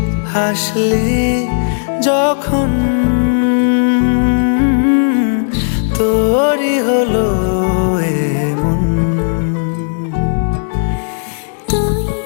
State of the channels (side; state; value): right; silent; digital silence